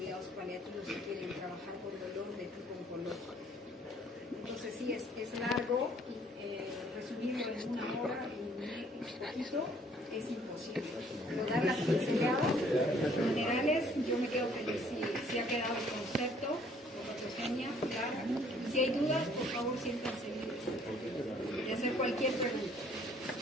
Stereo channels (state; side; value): normal; both; correlation 0.60